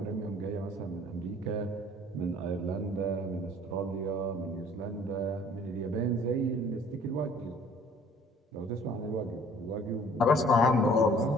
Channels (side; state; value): both; normal; correlation 0.54